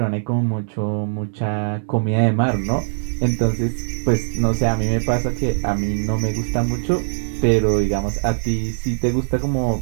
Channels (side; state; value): left; silent; digital silence